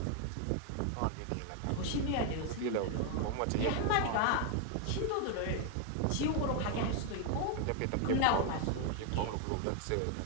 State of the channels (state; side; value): different; both; correlation 0.01